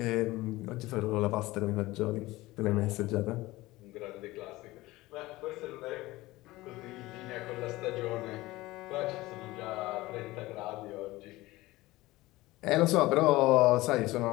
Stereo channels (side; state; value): right; quieter; 19.0 dB